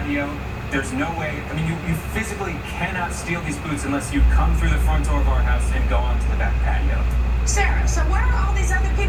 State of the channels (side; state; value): both; identical; correlation 1.00